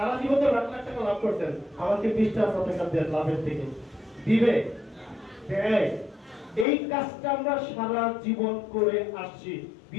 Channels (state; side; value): drops out; right; at 6.7 s